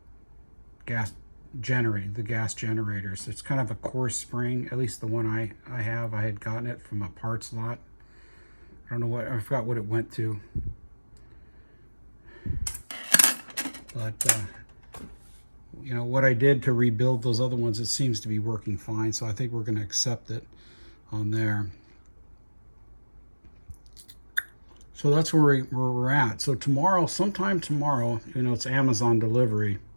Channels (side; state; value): both; inverted; correlation -1.00